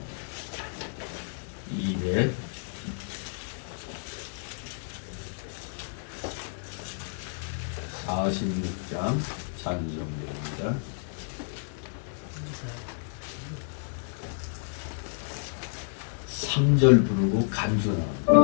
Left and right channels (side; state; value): right; silent; digital silence